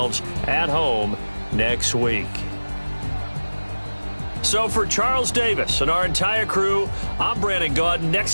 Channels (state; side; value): inverted; both; correlation -1.00